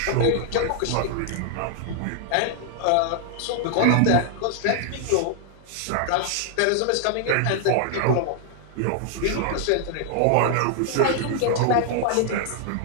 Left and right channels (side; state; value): both; different; correlation 0.00